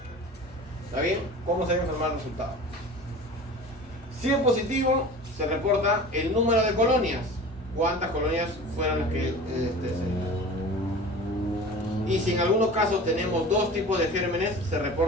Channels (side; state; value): both; normal; correlation 0.38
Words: ¿Está bien? ¿Cómo se debe informar el resultado? Si es positivo, se reporta el número de colonias. ¿Cuántas colonias fueron las que y si en algunos casos tenemos dos tipos de gérmenes, se